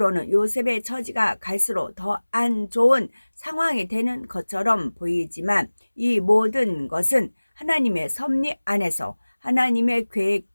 요셉의 처지가 갈수록 더 안 좋은 상황이 되는 것처럼 보이지만 이 모든 것은 하나님의 섭리 안에서 하나님의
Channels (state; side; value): inverted; both; correlation -1.00